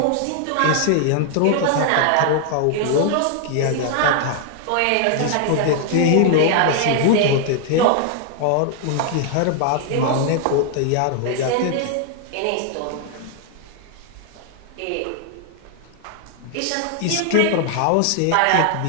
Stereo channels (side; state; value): both; different; correlation 0.00